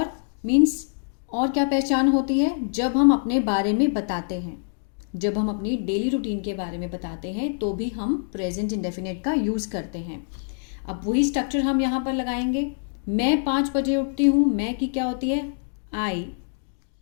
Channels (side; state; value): right; silent; digital silence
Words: मीन्स और क्या पहचान होती है? जब हम अपने बारे में बताते हैं, जब हम अपनी डेली रूटीन के बारे में बताते हैं तो भी हम प्रेजेंट इंडेफिनिट का यूज़ करते हैं। अब वही स्ट्रक्चर हम यहाँ पर लगाएंगे। मैं 5 बजे उठती हूँ, मैं की क्या होती है? आई।